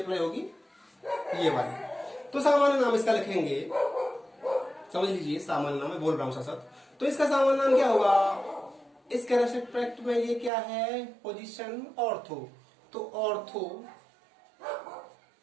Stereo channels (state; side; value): drops out; left; at 10.5 s